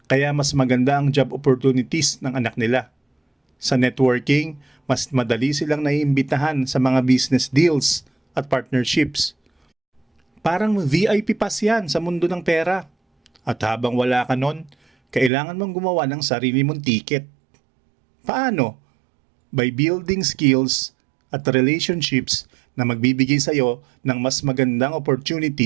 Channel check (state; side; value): drops out; left; at 15.3 s